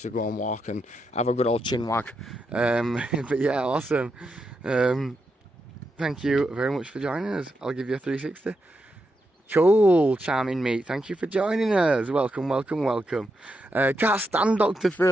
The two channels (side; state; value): both; normal; correlation 0.84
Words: to go and walk and have a good old chin wag. But yeah, awesome. Thank you very much for joining us. I'll give you a 360. Cool, charming mate, thank you for joining us. Welcome. Can't stand Dr.